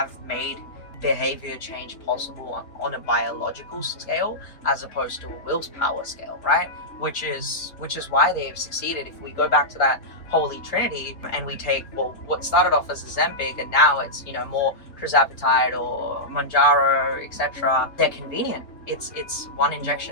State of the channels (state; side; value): late; right; 3.8 ms